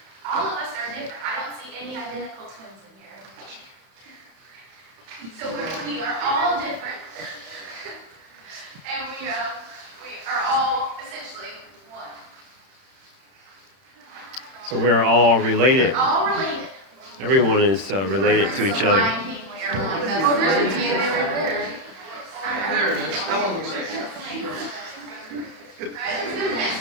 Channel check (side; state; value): left; late; 31 ms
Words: All of us are different. I don't see any identical twins in here. So we are all different, and we are all essentially one. So we are all related. We're all related. Everyone is related to each other. Lion King, we are one. Oh, there's a DNA right there. There it is. That one looks like it. Alright, let's go to the next